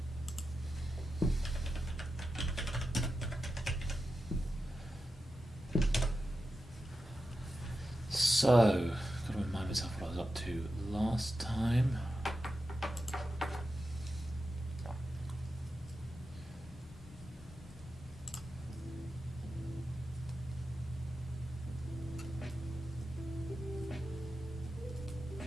So, gotta remind myself what I was up to last time.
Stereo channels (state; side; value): normal; both; correlation 0.91